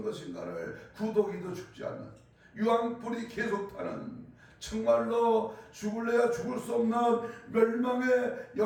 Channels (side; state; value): both; identical; correlation 1.00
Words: 것인가를 구더기도 죽지 않는, 유황불이 계속 타는, 정말로 죽을래야 죽을 수 없는 멸망의